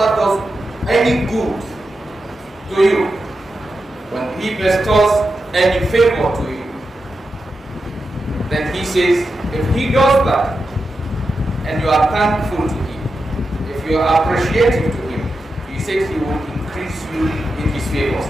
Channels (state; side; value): normal; both; correlation 0.89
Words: does any good to you, when He bestows any favor to you, then He says, if He does that, and you are thankful to Him, if you are appreciative to Him, He says He will increase you in His favors.